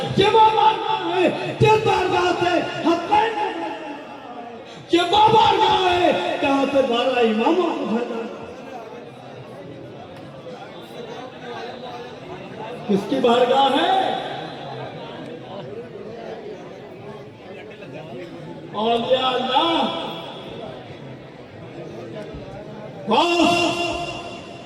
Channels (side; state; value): both; identical; correlation 1.00